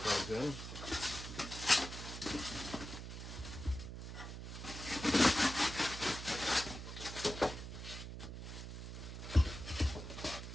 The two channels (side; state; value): right; noise; hum, 8 dB below the sound